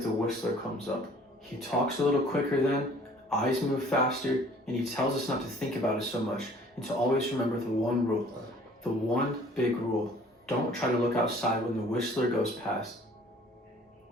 the whistler comes up. He talks a little quicker then, eyes move faster, and he tells us not to think about it so much and to always remember the one rule. The one big rule. Don't try to look outside when the whistler goes past.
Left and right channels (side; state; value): both; normal; correlation 0.53